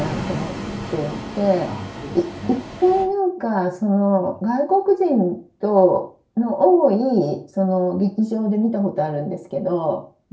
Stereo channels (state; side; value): identical; both; correlation 1.00